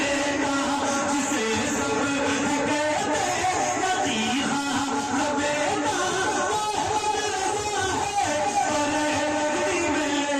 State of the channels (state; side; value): identical; both; correlation 1.00